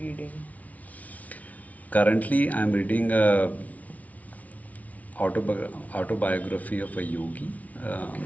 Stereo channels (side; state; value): right; late; 0.070 ms